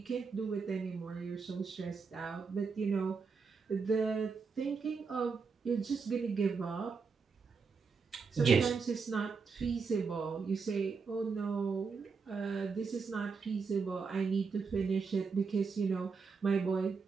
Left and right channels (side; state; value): left; quieter; 5.1 dB